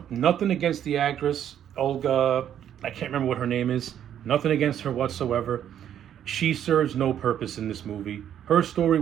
nothing against the actress Olga. I can't remember what her name is. Nothing against her whatsoever. She serves no purpose in this movie. Her story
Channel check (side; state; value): left; quieter; 10.0 dB